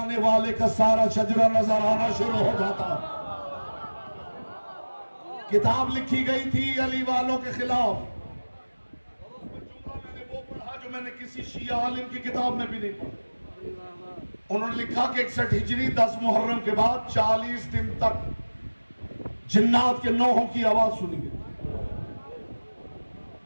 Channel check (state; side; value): inverted; both; correlation -1.00